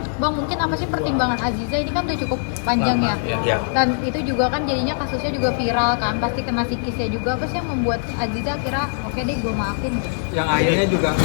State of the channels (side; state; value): right; silent; digital silence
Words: Bang, mungkin apa sih pertimbangan Aziza ini kan udah cukup panjang ya? Ya. Dan itu juga kan jadinya kasusnya juga viral kan, pasti kena psikisnya juga. Apa sih yang membuat Aziza kira oke deh gue maafin? Yang akhirnya juga